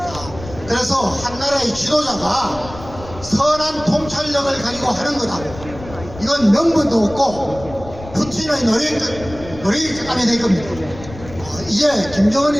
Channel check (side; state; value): left; noise; rumble, 15 dB below the sound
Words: 그래서 한 나라의 지도자가 선한 통찰력을 가지고 하는 거다고, 이건 명분도 없고 푸틴의 노래감이 될 겁니다. 이제